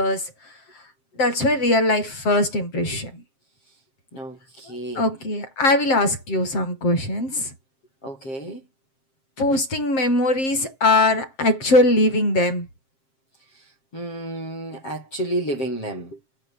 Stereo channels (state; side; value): late; right; 7.5 ms